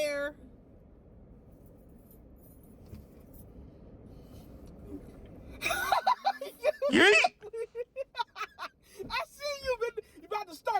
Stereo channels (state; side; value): identical; both; correlation 1.00